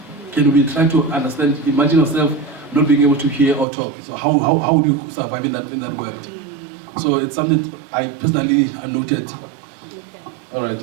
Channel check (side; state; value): left; drops out; at 3.7 s